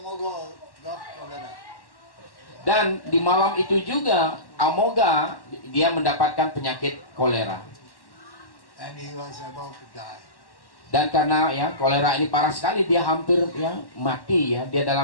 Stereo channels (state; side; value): late; right; 1.1 ms